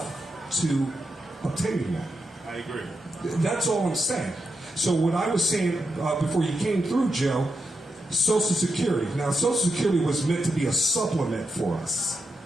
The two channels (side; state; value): both; normal; correlation 0.86